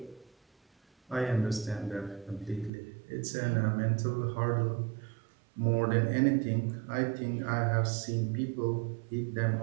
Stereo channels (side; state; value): left; drops out; at 2.7 s